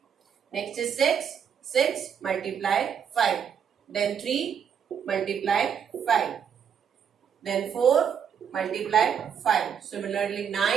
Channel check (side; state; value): left; quieter; 7.8 dB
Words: Next is 6, 6 multiply 5. Then 3 multiply 5. Then 4 multiply 5. Similarly